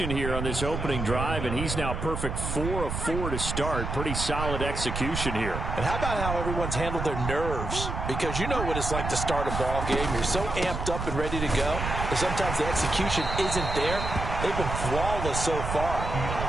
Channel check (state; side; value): noise; right; rumble, 4 dB below the sound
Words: here on this opening drive, and he's now perfect 4 of 4 to start. Pretty solid execution here. And how about how everyone's handled their nerves? Because you know what it's like to start a ball game. You're so amped up and ready to go, but sometimes the execution isn't there. They've been flawless so far.